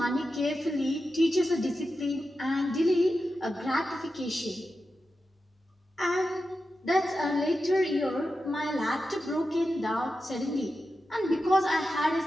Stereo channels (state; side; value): normal; both; correlation 0.91